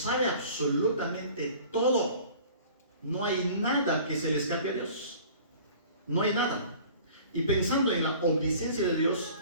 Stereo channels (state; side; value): inverted; both; correlation -0.47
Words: absolutamente todo. No hay nada que se le escape a Dios. No hay nada. Y pensando en la omnisciencia de Dios,